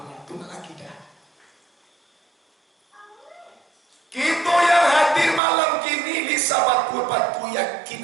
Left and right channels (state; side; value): drops out; left; at 5.4 s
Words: Itu akidah. Kita yang hadir malam kini bisa batu yakin